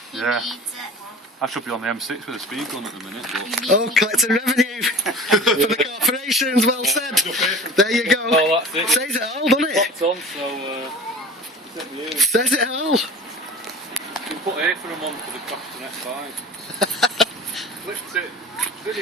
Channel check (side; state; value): both; normal; correlation 0.40